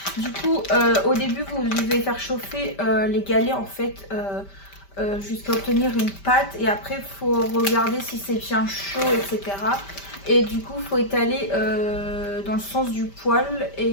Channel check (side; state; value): right; late; 5.1 ms